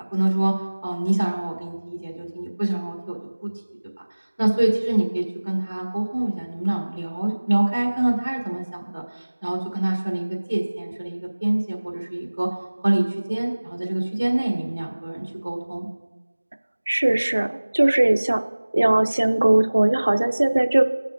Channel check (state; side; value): inverted; both; correlation -1.00